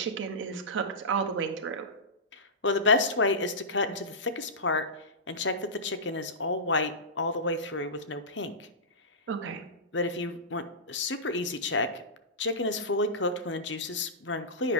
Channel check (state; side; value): normal; both; correlation -0.18